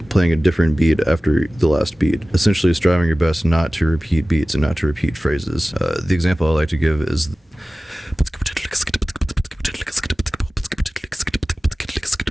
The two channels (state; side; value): normal; both; correlation 0.97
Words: playing a different beat after the last beat. Essentially striving your best not to repeat beats and not to repeat phrases. The example I like to give is...